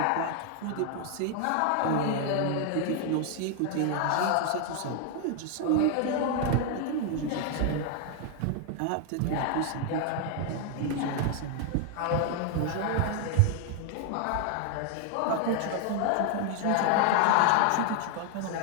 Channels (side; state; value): both; different; correlation 0.00